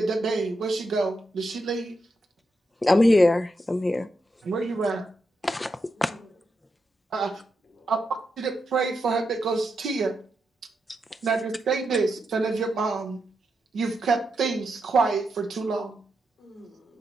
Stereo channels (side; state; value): both; normal; correlation 0.85